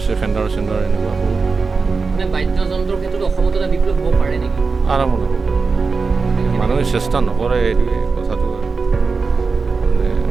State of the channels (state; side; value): quieter; left; 4.6 dB